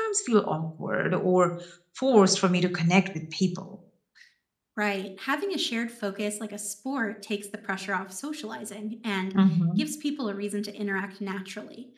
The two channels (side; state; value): both; identical; correlation 1.00